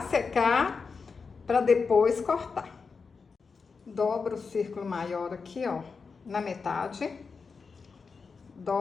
secar para depois cortar. Dobro o círculo maior aqui, ó, na metade.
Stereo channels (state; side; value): quieter; right; 5.0 dB